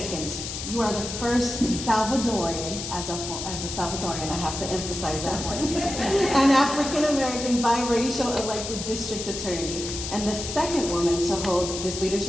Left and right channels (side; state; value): left; noise; hiss, 6 dB below the sound